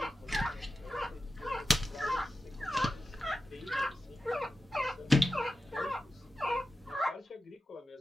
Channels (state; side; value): normal; both; correlation 0.92